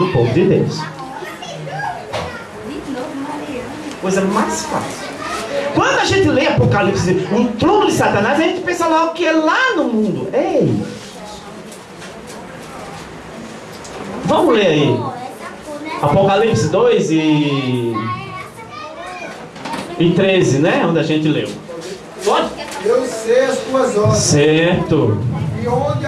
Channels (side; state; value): both; identical; correlation 1.00